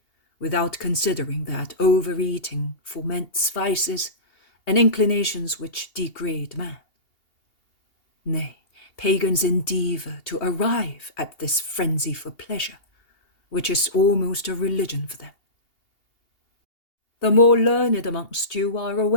without considering that overeating foments vices and inclinations which degrade man. Nay, pagans endeavour to arrive at this frenzy for pleasure, which is almost a religion for them. The more learned amongst you are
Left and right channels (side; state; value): right; late; 2.8 ms